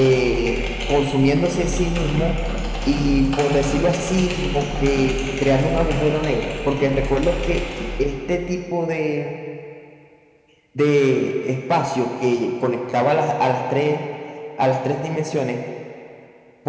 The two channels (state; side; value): identical; both; correlation 1.00